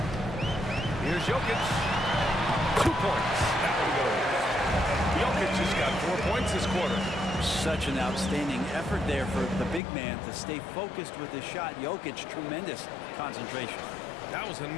Here's Jokic. 2 points. That one goes. Jokic has got 4 points this quarter. Such an outstanding effort there for the big man to stay focused with his shot. Jokic, tremendous concentration. That was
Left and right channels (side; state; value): right; drops out; at 9.8 s